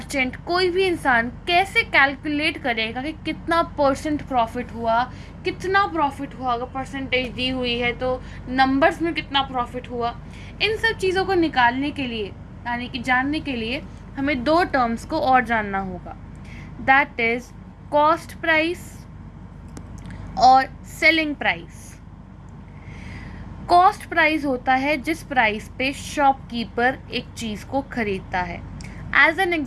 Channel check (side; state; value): both; identical; correlation 1.00